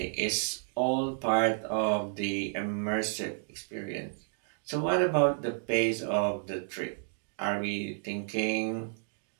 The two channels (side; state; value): left; silent; 57 dB below the other